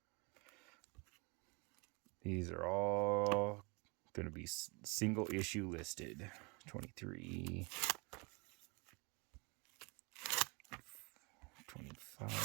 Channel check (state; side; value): quieter; left; 30.1 dB